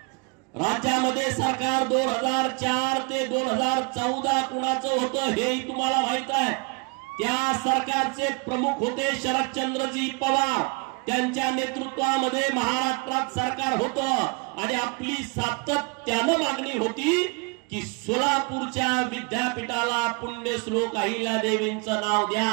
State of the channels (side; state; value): left; quieter; 30.2 dB